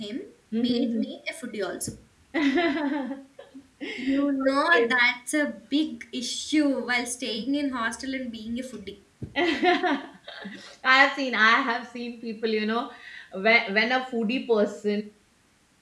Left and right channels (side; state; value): both; identical; correlation 1.00